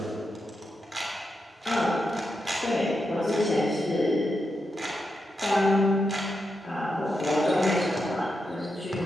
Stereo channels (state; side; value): normal; both; correlation 0.86